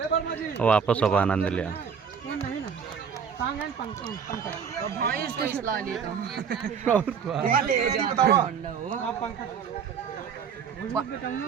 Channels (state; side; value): quieter; left; 6.9 dB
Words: वापस अब आनंद लिया।